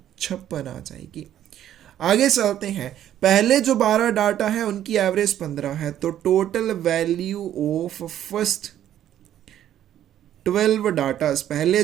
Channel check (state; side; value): quieter; left; 11.4 dB